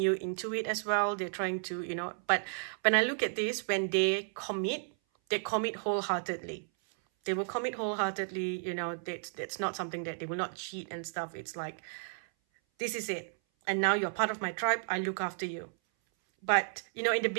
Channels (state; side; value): silent; left; 56 dB below the other